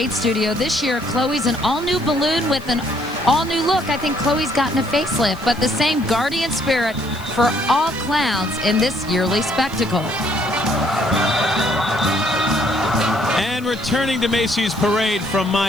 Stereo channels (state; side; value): noise; left; hiss, 23 dB below the sound